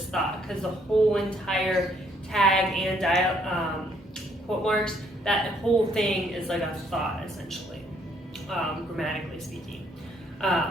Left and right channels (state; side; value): normal; both; correlation 0.67